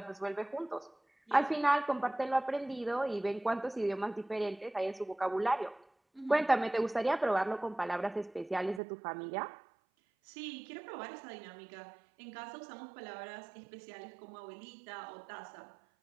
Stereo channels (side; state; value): left; drops out; at 8.8 s